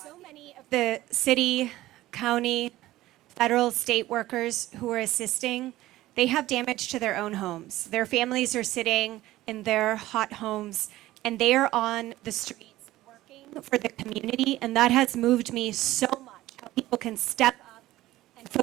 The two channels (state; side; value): quieter; left; 16.2 dB